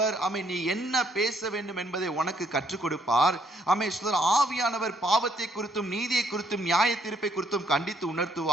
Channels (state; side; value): normal; both; correlation 0.69